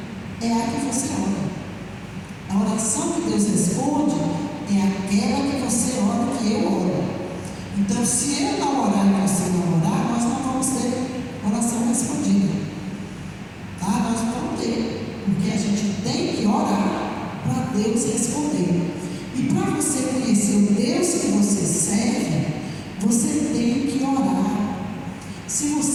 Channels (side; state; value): both; identical; correlation 1.00